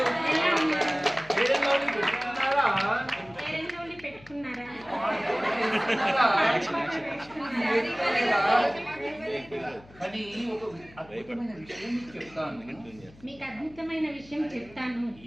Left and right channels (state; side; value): noise; left; hum, 23 dB below the sound